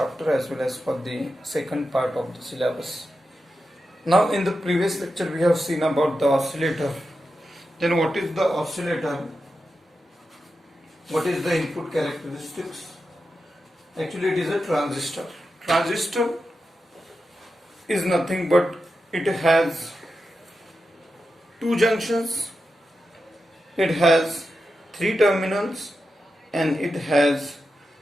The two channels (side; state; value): both; normal; correlation 0.89